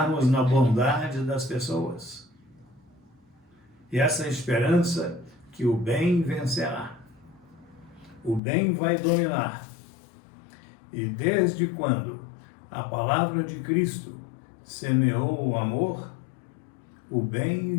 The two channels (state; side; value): drops out; right; at 8.4 s